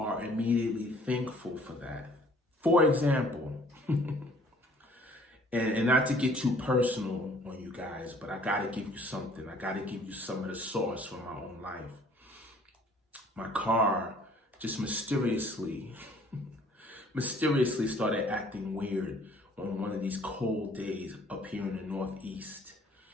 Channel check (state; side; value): normal; both; correlation 0.56